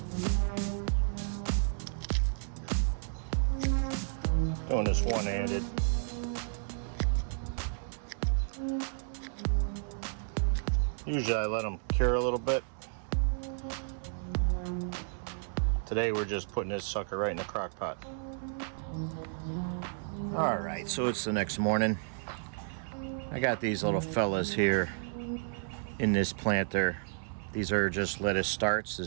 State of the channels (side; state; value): left; silent; 56 dB below the other